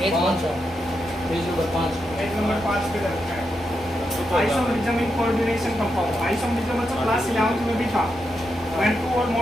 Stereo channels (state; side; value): normal; both; correlation 0.85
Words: कौन सा पेज नंबर 5 पेज नंबर 5 पे रखा है isomerism in coordination compound isomerism मतलब क्लास 11th में भी था when two or